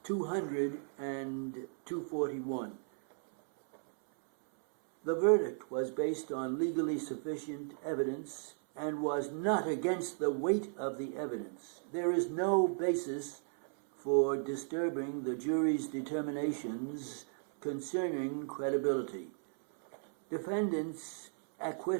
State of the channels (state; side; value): silent; left; 54 dB below the other